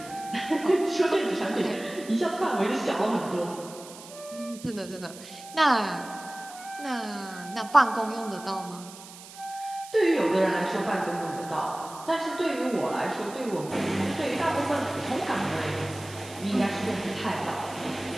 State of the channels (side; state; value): right; noise; hiss, 17 dB below the sound